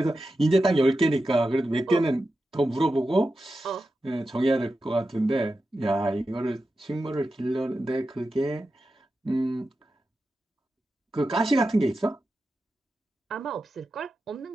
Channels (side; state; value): both; normal; correlation 0.91